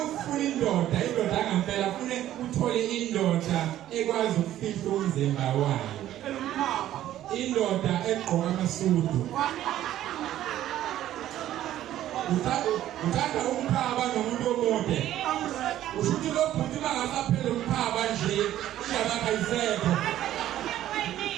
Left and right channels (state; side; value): quieter; left; 12.8 dB